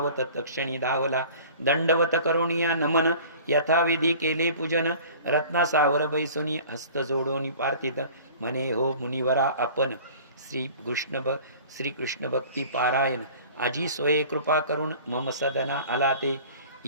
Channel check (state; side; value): inverted; both; correlation -0.45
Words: तक्षणी धावला दंडवत करुणिया नमन यथाविधी केले पूजन रत्ना सावर बैसुनी हस्त जोडोनी पार्थित म्हणे हो मुनिवरा आपण श्री कृष्ण भक्ती पारायण आजी सोये कृपा करून मम सदना आला ते